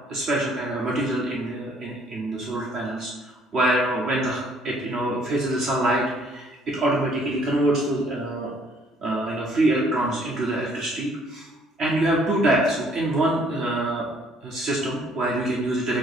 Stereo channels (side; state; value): both; normal; correlation 0.62